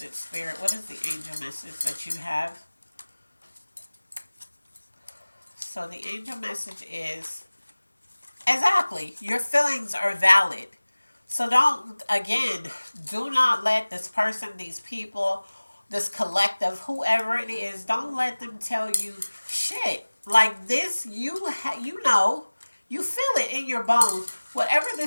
spirit. What is the angel message that you have? So the angel message is exactly your feelings are valid. So don't, again, do not let this person, these people, this collective, whoever it is, don't let them tell you shit. Like this, you know, you feel it in your bones. Whatever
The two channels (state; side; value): inverted; both; correlation -1.00